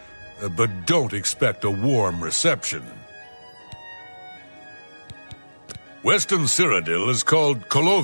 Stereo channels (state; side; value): inverted; both; correlation -1.00